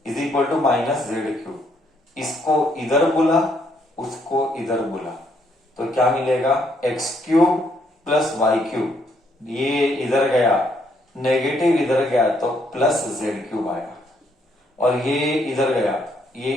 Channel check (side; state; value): both; normal; correlation 0.71